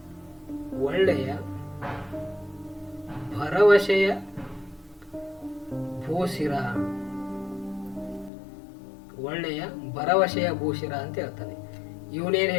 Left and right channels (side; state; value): right; drops out; at 8.3 s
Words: ಭರವಸೆಯ ಭೂಶಿರ, ಒಳ್ಳೆಯ ಭರವಸೆಯ ಭೂಶಿರ ಅಂತ ಹೇಳ್ತಾನೆ. ಇವನೇನ್